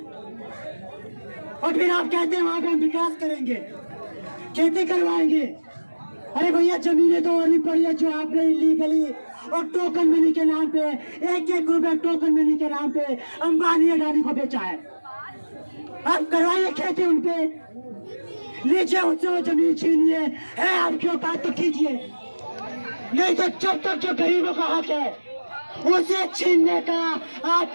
और फिर आप कहते हैं वहां पे हम विकास करेंगे, खेती करवाएंगे। अरे भैया जमीनें तो और भी पड़ी है जो आपने इलीगली और टोकन मनी के नाम पे, एक रुपए टोकन मनी के नाम पे अंबानी अडानी को बेचा है। आप करवाइए खेती उनपे, लीजिए उनसे वो जमीन छीनिए, है आपकी औकात तो कीजिए, नहीं तो जब तक जो गरीबों का हक है उसे छीनने का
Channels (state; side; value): inverted; both; correlation -1.00